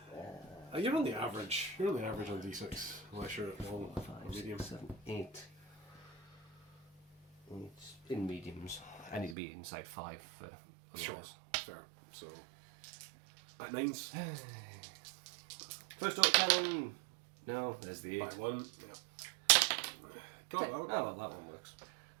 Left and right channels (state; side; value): drops out; left; at 9.3 s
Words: You're on the average. You're on the average on D6, unless you're at long 5, or medium. 6, 7, 8. It's in mediums. I need to be inside 5 for otherwise. Sure, fair. So, at 9s. First auto cannon. No, there's the 8. By 1, yeah. Got it, that one. Oh, well, that one works.